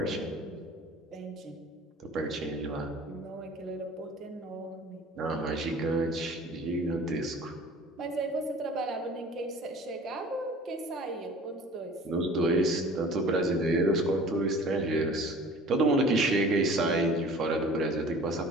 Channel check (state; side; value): normal; both; correlation 0.46